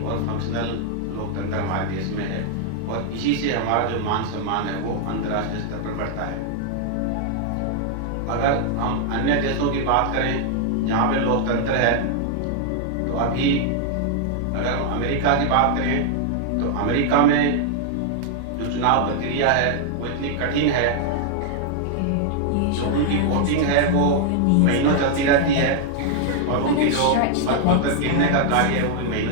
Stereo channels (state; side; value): different; both; correlation 0.00